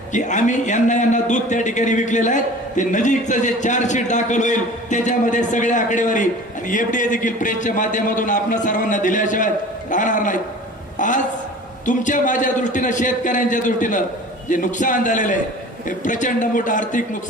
की आम्ही यांना दूध त्या ठिकाणी विकलेलं आहे. ते नजीकचं जे चार्जशीट दाखल होईल त्याच्यामध्ये सगळ्या आकडेवारी आणि FDA देखील प्रेसच्या माध्यमातून आपणा सर्वांना दिल्याशिवाय राहणार नाहीत. आज तुमच्या माझ्या दृष्टीनं शेतकऱ्यांच्या दृष्टीनं जे नुकसान झालेलं आहे हे प्रचंड मोठं आर्थिक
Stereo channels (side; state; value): both; normal; correlation 0.41